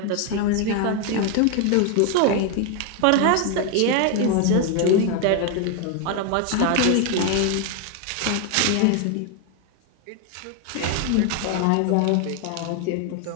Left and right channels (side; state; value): both; different; correlation 0.01